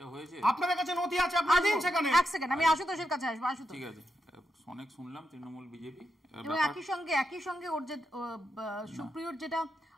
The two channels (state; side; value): normal; both; correlation 0.85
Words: আপনাদের কাছে নথি আছে, আপনারা দিন সেখানে। এক সেকেন্ড, আমি আশুতোষের কাছে আসবো। আশুতোষ, ঠিক আছে, অনেক শুনলাম তৃণমূল বিজেপি, এবং একই সঙ্গে ওর যে সুপ্রিয়র যেটা